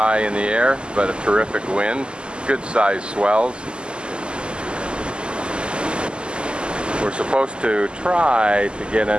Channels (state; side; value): late; left; 0.050 ms